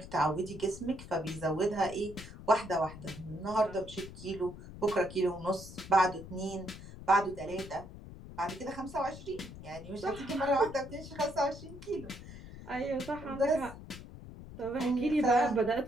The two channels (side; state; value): left; noise; rumble, 14 dB below the sound